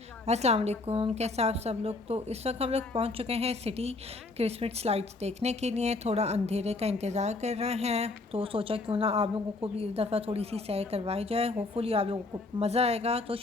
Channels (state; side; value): quieter; right; 3.3 dB